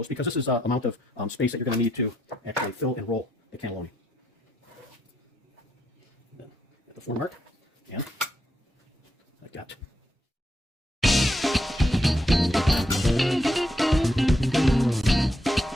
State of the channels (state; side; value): normal; both; correlation 0.78